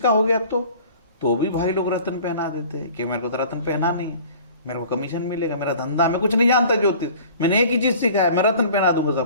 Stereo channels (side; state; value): both; inverted; correlation -0.47